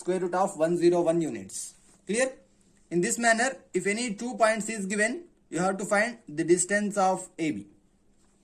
root of 101 units. Clear? In this manner, if any 2 points is given, you have to find the distance of AB.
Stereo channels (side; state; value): both; identical; correlation 1.00